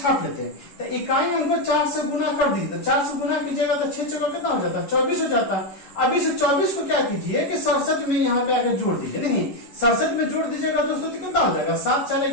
लेते हैं। तो इकाई अंक को 4 से गुना कर दीजिए, तो 4 से गुना कीजिएगा तो 6 चौका कितना हो जाता है, 24 हो जाता है। अब इस 24 को क्या कीजिए कि 67 में यहाँ पे आके जोड़ दीजिए। नहीं, 67 में जोड़ दीजिएगा दोस्तों तो कितना हो जाएगा, 7 4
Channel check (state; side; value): late; right; 11 ms